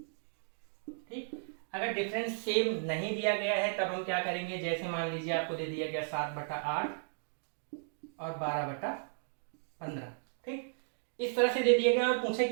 ठीक, अगर डिफरेंस सेम नहीं दिया गया है तब हम क्या करेंगे, जैसे मान लीजिए आपको दे दिया गया 7/8 और 12/15। ठीक, इस तरह से दे दिया गया और पूछे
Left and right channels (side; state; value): left; silent; digital silence